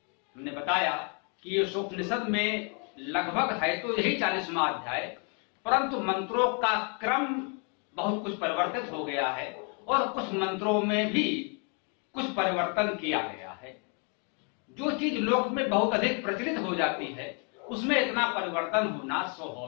हमने बताया कि ईशोपनिषद में लगभग है तो यही 40वां अध्याय, परंतु मंत्रों का क्रम बहुत कुछ परिवर्तित हो गया है और कुछ मंत्रों में भी कुछ परिवर्तन किया गया है। जो चीज लोक में बहुत अधिक प्रचलित हो जाती है उसमें इतना परिवर्तन होना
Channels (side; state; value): right; quieter; 37.7 dB